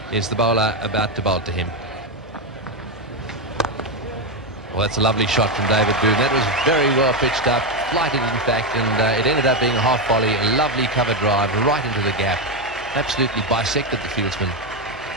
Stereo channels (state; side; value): normal; both; correlation 0.08